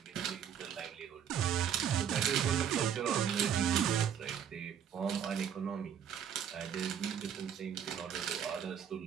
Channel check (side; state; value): left; quieter; 8.6 dB